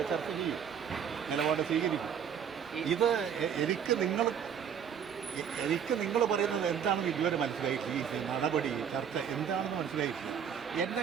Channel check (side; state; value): left; quieter; 8.0 dB